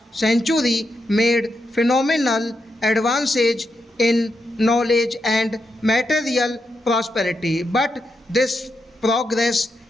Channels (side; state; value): both; normal; correlation 0.84